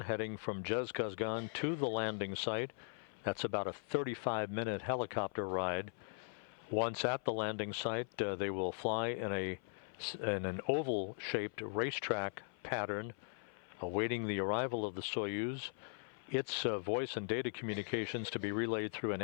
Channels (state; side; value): silent; right; 51 dB below the other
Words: heading from Zhezkazgan to the landing site. That's about a 35-minute helicopter ride. Once at the landing site, they will fly in an oval-shaped racetrack pattern, awaiting the arrival of the Soyuz. Its voice and data communications to be relayed through an